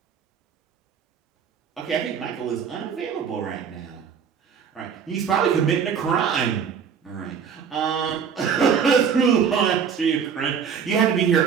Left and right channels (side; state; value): left; quieter; 7.0 dB